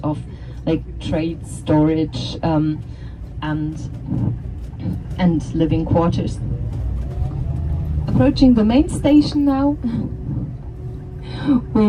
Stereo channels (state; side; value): identical; both; correlation 1.00